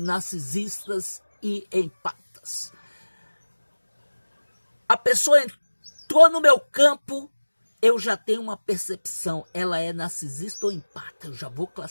e empatas. A pessoa entrou no meu campo, eu já tenho uma percepção, ela é narcisista ou empata, eu já vou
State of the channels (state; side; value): inverted; both; correlation -1.00